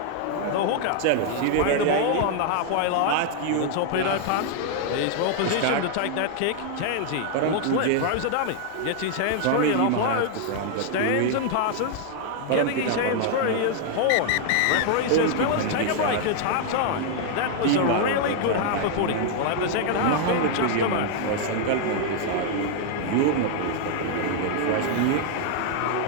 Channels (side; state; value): both; different; correlation 0.00